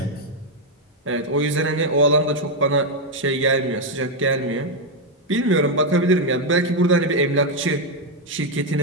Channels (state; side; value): normal; both; correlation 0.02